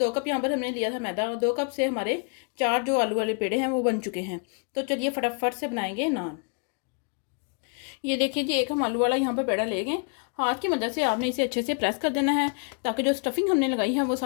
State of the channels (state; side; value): quieter; right; 38.5 dB